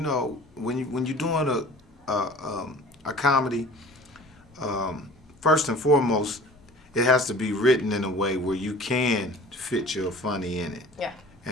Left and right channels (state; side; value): normal; both; correlation 0.45